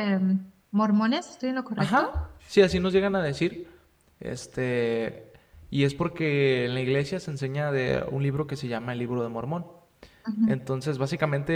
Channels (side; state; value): both; identical; correlation 1.00